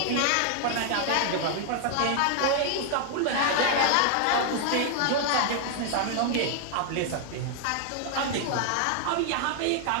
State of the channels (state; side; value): different; both; correlation 0.00